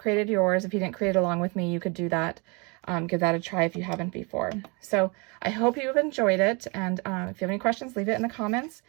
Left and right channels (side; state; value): left; quieter; 30.3 dB